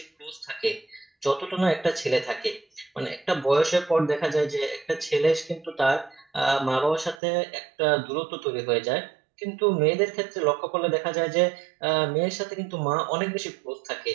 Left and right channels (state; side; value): drops out; left; at 7.2 s